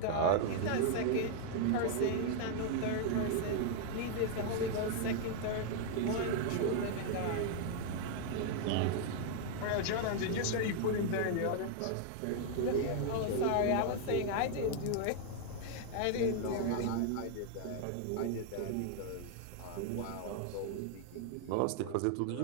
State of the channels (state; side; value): different; both; correlation 0.00